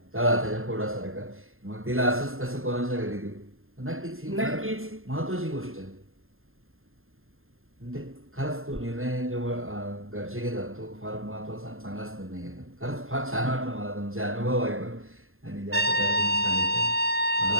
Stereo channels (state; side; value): late; left; 0.61 ms